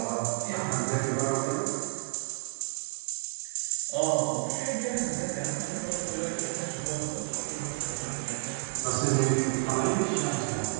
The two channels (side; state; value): left; silent; digital silence